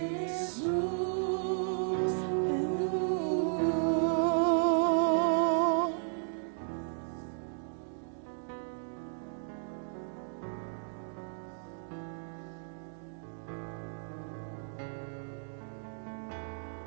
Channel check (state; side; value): silent; left; digital silence